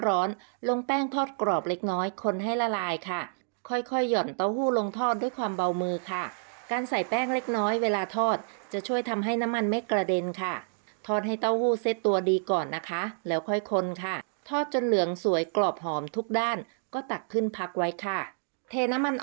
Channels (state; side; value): silent; left; digital silence